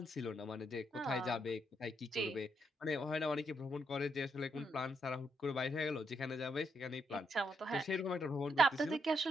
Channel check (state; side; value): normal; both; correlation 0.79